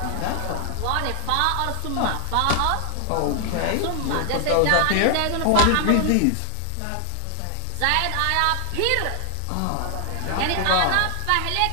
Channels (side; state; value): both; different; correlation 0.00